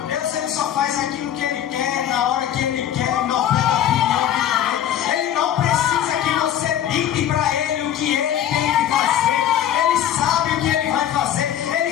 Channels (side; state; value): right; quieter; 10.5 dB